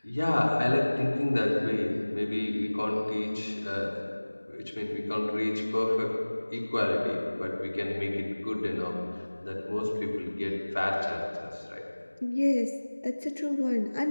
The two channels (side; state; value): both; inverted; correlation -1.00